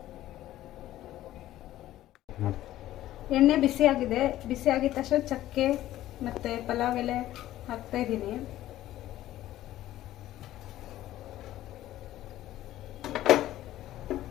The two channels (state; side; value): quieter; right; 14.2 dB